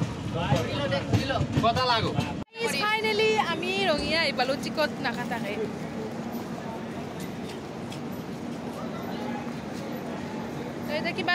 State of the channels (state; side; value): identical; both; correlation 1.00